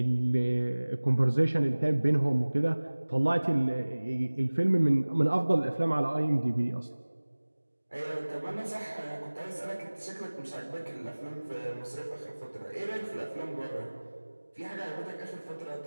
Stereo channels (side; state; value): both; inverted; correlation -1.00